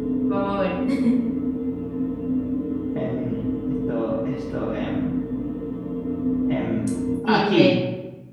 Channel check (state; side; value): identical; both; correlation 1.00